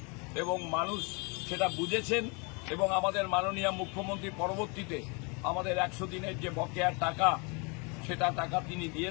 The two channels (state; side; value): quieter; right; 31.9 dB